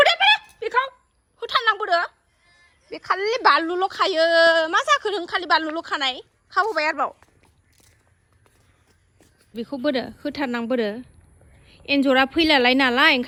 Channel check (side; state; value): both; identical; correlation 1.00